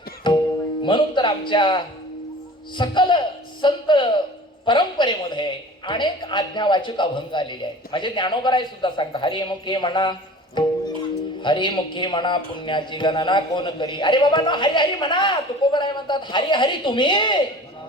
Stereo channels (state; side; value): normal; both; correlation 0.42